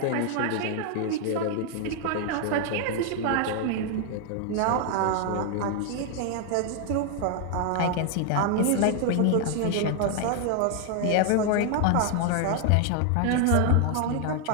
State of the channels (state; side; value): different; both; correlation 0.00